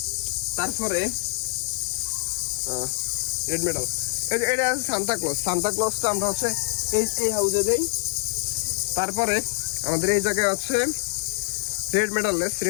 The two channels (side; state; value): right; silent; digital silence